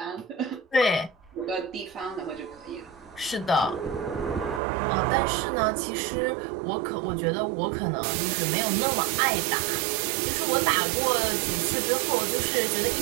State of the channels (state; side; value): drops out; left; at 4.6 s